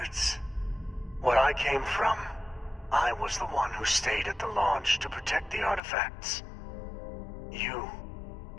Where I came from, I was the one who stayed at the launch to protect the artifacts. You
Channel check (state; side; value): drops out; right; at 5.8 s